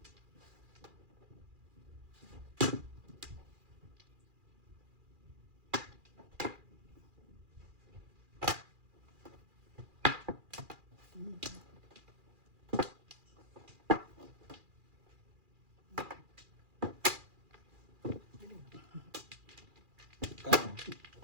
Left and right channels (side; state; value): left; late; 2.4 ms